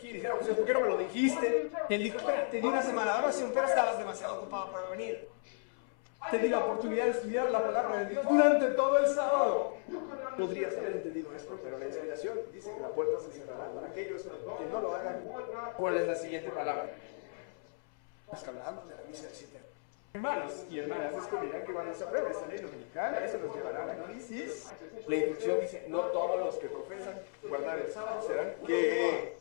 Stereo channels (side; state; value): right; silent; 55 dB below the other